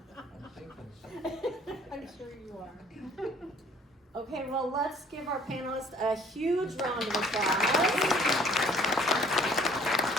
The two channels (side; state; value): both; normal; correlation 0.57